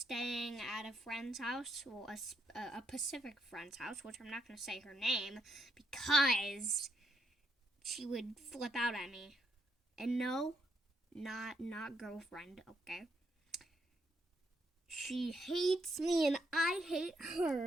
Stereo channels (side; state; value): both; normal; correlation 0.77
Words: at a friend's house, well, a Pacific friend's house, which I'm not going to say her name because she would flip out at me. And no, not girlfriend, okay? She hates me and I hate